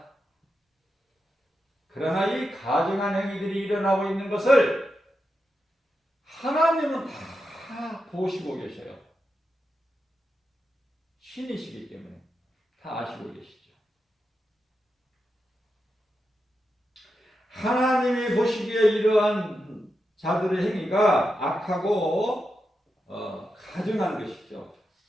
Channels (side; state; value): both; normal; correlation 0.88